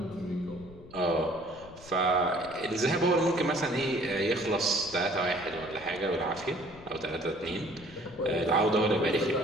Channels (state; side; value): noise; left; rumble, 20 dB below the sound